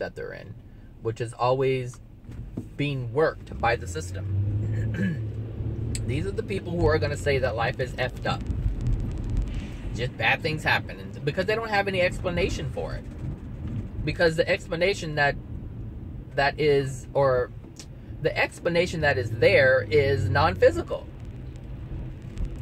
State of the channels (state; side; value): identical; both; correlation 1.00